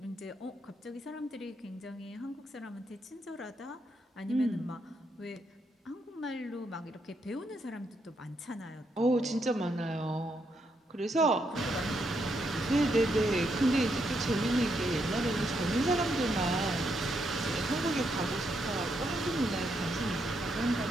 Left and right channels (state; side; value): normal; both; correlation 0.78